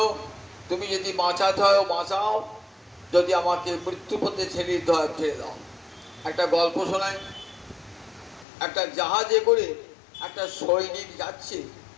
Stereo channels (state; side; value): drops out; right; at 8.5 s